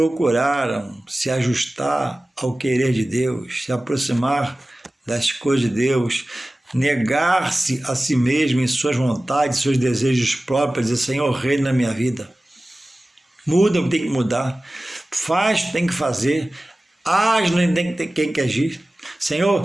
se ajustar ao querer de Deus, se aproximar das coisas de Deus, negar-se a si mesmo em suas vontades, seus desejos próprios, dizer: Senhor, reina na minha vida. Muda o que tem que mudar, faz o que tem que fazer, age no que tem que agir. Senhor,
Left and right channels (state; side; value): normal; both; correlation 0.97